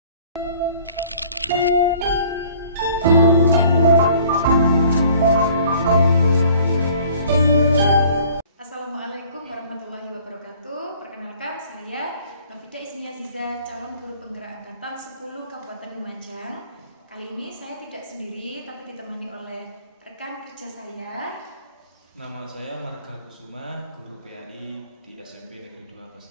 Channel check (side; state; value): both; inverted; correlation -0.53